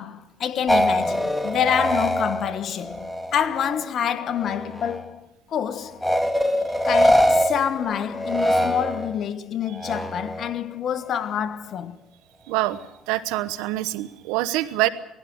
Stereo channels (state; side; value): normal; both; correlation 0.74